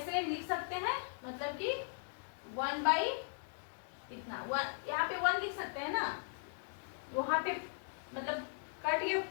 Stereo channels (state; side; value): silent; right; digital silence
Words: लिख सकते हैं, मतलब कि 1 बाई इतना, यहाँ पे 1 लिख सकते हैं ना, वहां पे मतलब कट गया,